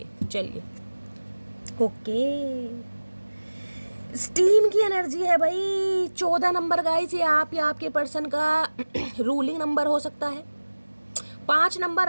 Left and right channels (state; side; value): inverted; both; correlation -1.00